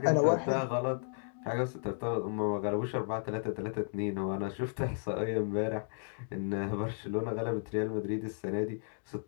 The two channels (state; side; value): silent; right; digital silence